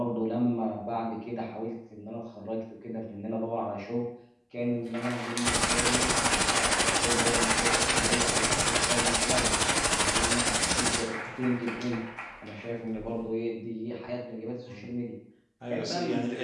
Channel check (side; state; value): both; identical; correlation 1.00